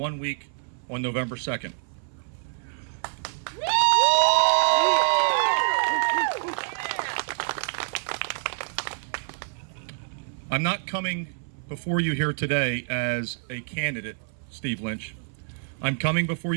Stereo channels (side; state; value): left; silent; 59 dB below the other